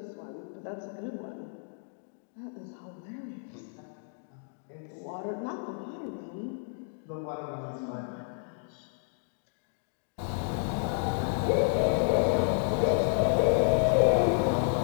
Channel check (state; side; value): silent; right; digital silence